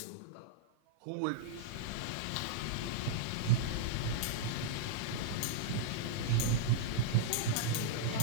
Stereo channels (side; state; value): both; different; correlation -0.02